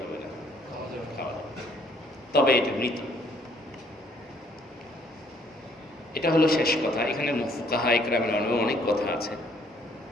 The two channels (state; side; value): normal; both; correlation 0.63